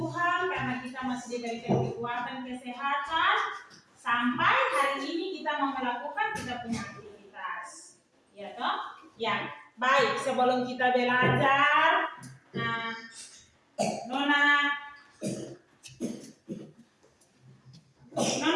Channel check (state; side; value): identical; both; correlation 1.00